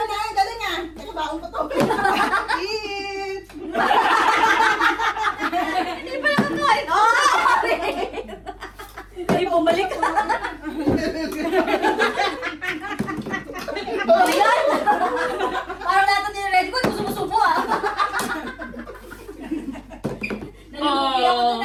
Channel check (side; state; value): both; identical; correlation 1.00